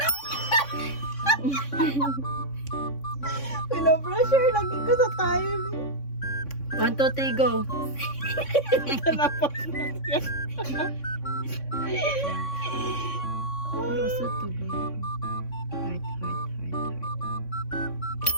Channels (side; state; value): right; late; 3.6 ms